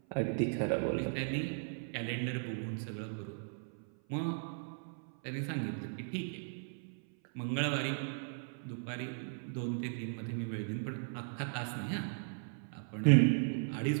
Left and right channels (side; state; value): left; silent; 53 dB below the other